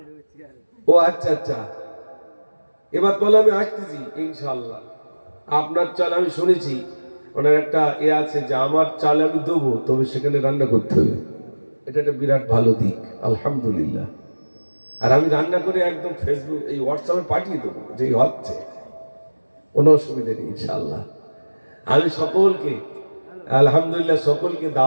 ও আচ্ছা আচ্ছা, এবার বলে আমি আসতেছি ইনশাআল্লাহ। আপনার চাল আমি শুনেছি ওনার একটা আছে যে আমার চাল আমি দেবো, তবে সেখানে রান্না করতে হবে, এটা একটা বিরাট ভালো দিক আলহামদুলিল্লাহ। আর আমি রান্না করে একদম ফেসবুক এই হোয়াটসঅ্যাপে পাঠিয়ে দেবো, যে হচ্ছে কোনো অসুবিধা নেই ইনশাআল্লাহ। আমি সকলকে আলহামদুলিল্লাহ সকলকে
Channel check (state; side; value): inverted; both; correlation -1.00